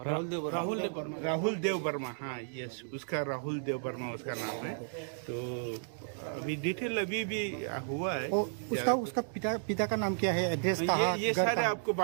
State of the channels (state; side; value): silent; left; digital silence